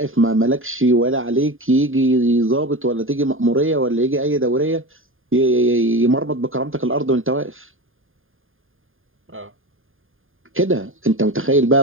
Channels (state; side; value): late; left; 0.59 ms